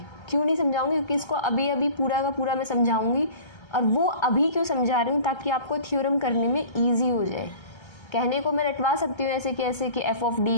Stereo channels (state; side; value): late; right; 1.3 ms